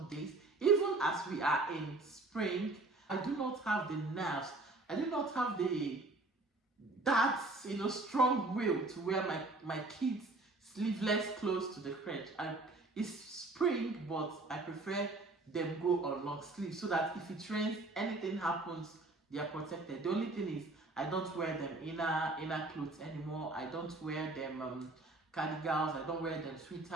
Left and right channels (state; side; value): quieter; left; 3.1 dB